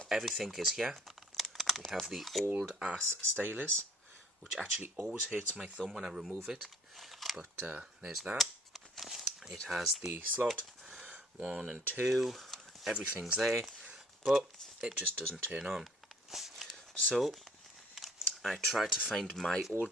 everything is here. We have the old ass stylus, which actually always hurts my thumb when I remove it, but there's that. It has the slot 1 and 2, everything's there, but it just doesn't turn on. So I tried to find my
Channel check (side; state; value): both; normal; correlation 0.57